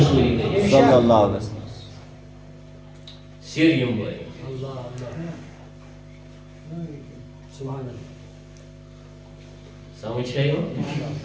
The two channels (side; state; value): both; identical; correlation 1.00